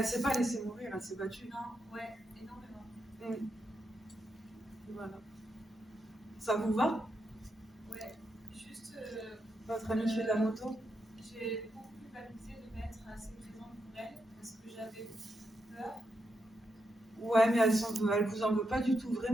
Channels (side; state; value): both; normal; correlation 0.83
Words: s'est pas laissée mourir, elle s'est battue. Non, ouais, énormément. Voilà. Ça vous va? Ouais, juste. Votre amie fait de la moto? J'ai beaucoup culpabilisé de m'être assez présente pour elle parce que j'avais peur. Ouais, mais elle vous en veut pas du tout,